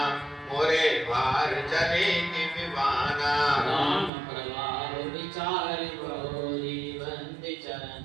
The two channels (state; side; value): drops out; left; at 4.1 s